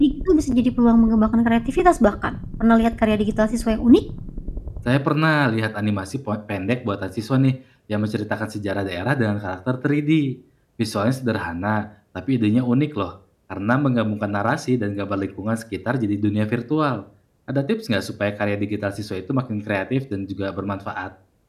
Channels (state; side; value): identical; both; correlation 1.00